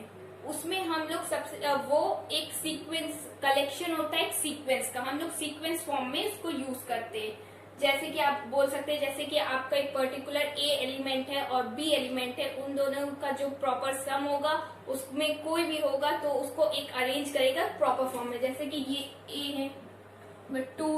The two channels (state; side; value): identical; both; correlation 1.00